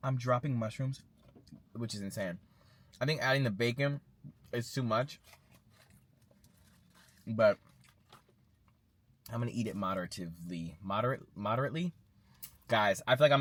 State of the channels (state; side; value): identical; both; correlation 1.00